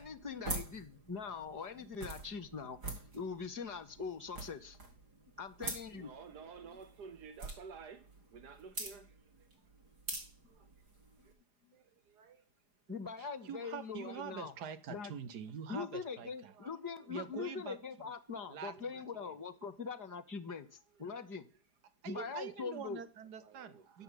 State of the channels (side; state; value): left; late; 4.9 ms